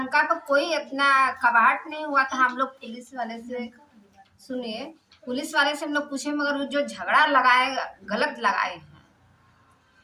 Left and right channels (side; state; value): both; identical; correlation 1.00